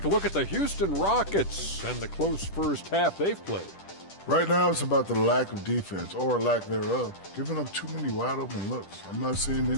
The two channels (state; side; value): late; right; 10 ms